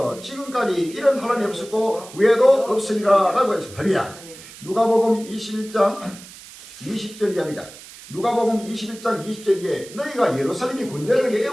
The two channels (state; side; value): noise; right; hiss, 18 dB below the sound